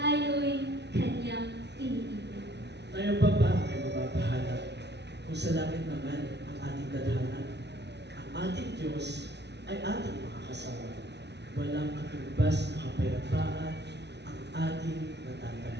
kanyang iniibig. Tayo pa ba ay mapapahanap kung sa langit naman ang ating dadhanan? Ang ating Diyos ay ating makakasama. Walang katumbas na kapayapaan ang ating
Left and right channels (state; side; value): late; left; 0.50 ms